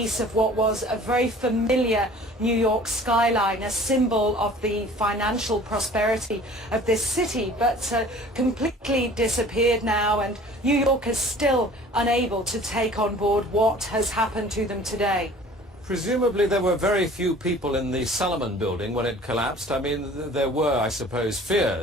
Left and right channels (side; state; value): both; normal; correlation 0.47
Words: of what was a very familiar New York skyline, a symbol of the financial prosperity of this city, but completely disappeared now, and New York is still unable to take on board what has happened to them today. Presumably there were very few people in the Salomon building when it collapsed. I mean, there were, I suppose,